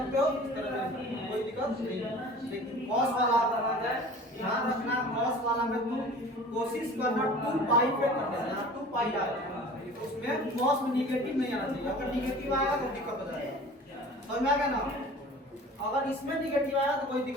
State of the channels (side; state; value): both; normal; correlation 0.42